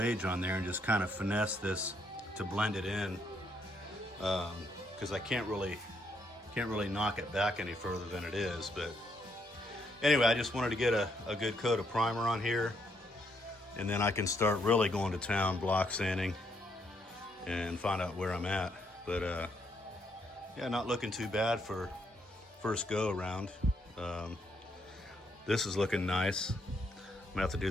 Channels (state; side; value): normal; both; correlation 0.74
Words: on there and just kind of finesse this to blend it in, because I can't really knock it back any further than it is. But anyway, I just wanted to get a good coat of primer on here, and then I can start really going to town block sanding and find out where I'm at. But yeah, not looking too bad for first go around. This is looking nice. I'm gonna have to do